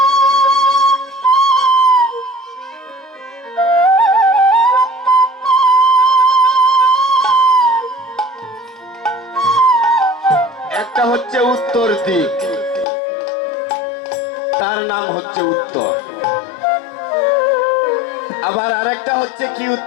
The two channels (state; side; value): drops out; right; at 12.9 s